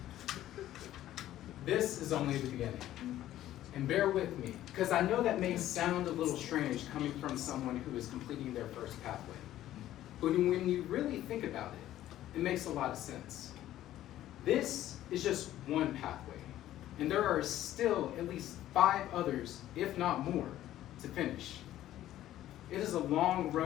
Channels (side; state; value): right; quieter; 13.4 dB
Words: This is only the beginning. And bear with me, because I know that may sound a little strange coming from someone who is completing their first pathway. But when you really think about it, it makes a lot of sense. This is just one pathway, and there are still at least 5 others, if not more, to finish. It is a long